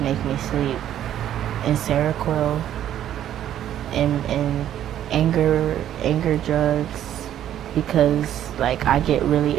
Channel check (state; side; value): quieter; left; 11.2 dB